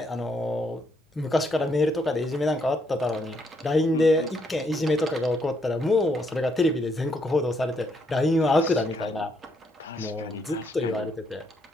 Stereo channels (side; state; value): both; normal; correlation 0.74